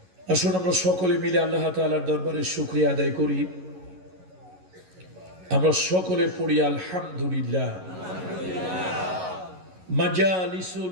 আসুন আমরা সকলে মিলে আল্লাহ তাআলার দরবারে শুকরিয়া আদায় করি। আমরা সকলে পড়ি আলহামদুলিল্লাহ।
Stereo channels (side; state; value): left; late; 11 ms